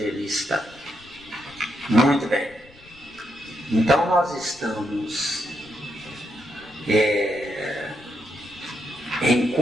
Muito bem. Então nós estamos em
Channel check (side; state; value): left; noise; rumble, 25 dB below the sound